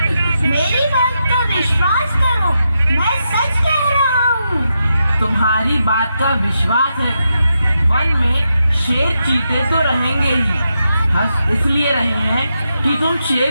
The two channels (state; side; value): inverted; both; correlation -0.85